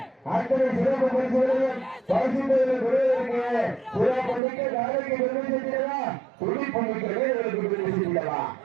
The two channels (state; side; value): drops out; left; at 4.4 s